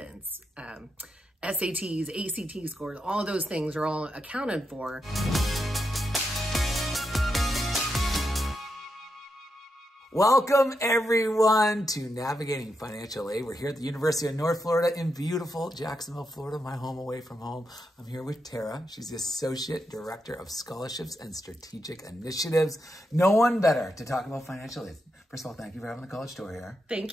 SATs, ACT scores. All of those things are all accounted for. Welcome everyone to Navigating Financial Aid. We're here at the University of North Florida in beautiful Jacksonville, Florida, my home away from home. I'm here with Tara. She's the Associate Director of Scholarships and Strategic Initiatives. No one better to talk about financial aid. First of all, thank you for having the college tour here.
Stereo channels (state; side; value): normal; both; correlation 0.84